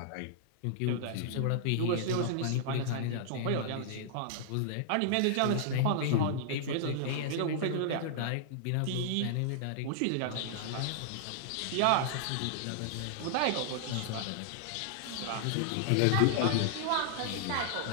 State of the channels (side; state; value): both; different; correlation -0.01